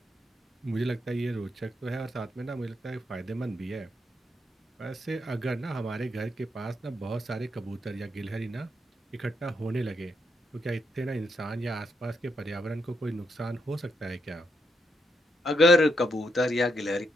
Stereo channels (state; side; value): normal; both; correlation 0.79